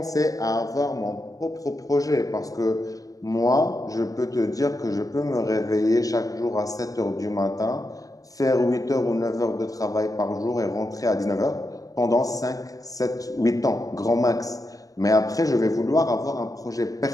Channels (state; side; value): late; right; 0.17 ms